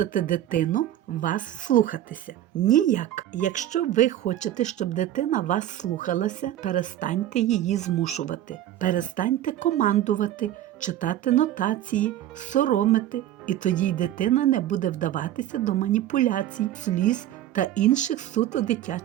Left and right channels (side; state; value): left; quieter; 12.4 dB